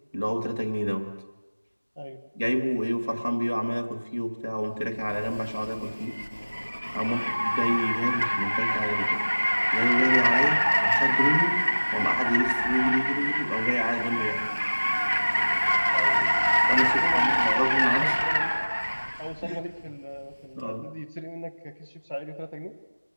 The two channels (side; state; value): both; inverted; correlation -1.00